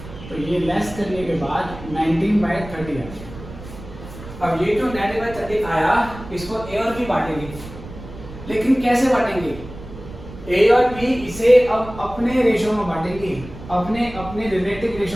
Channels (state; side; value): noise; right; rumble, 14 dB below the sound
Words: तो ये लेस करने के बाद 19/30 आ गया। अब ये जो 19/30 आया इसको ए और बी बांटेंगे, लेकिन कैसे बांटेंगे? ए और बी इसे अब अपने रेशो में बांटेंगे, अपने रिलेटिव